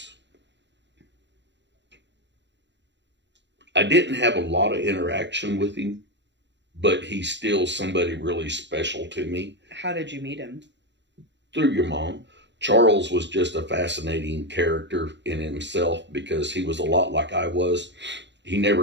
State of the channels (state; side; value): late; left; 0.52 ms